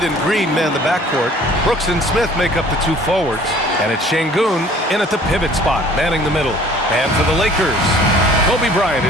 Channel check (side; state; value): both; normal; correlation 0.52